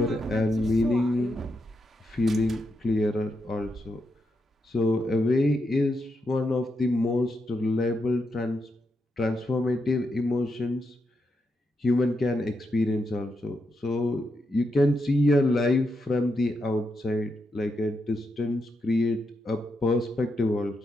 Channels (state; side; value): normal; both; correlation 0.83